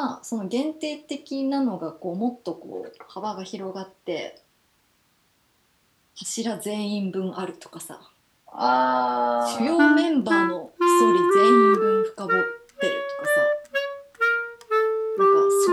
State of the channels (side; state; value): both; identical; correlation 1.00